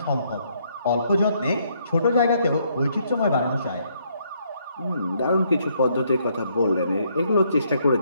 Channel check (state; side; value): inverted; both; correlation -0.71